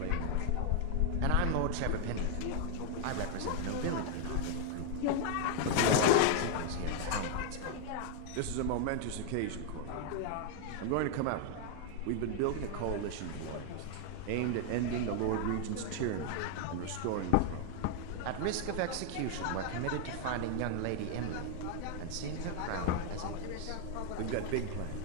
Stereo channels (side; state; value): both; different; correlation 0.00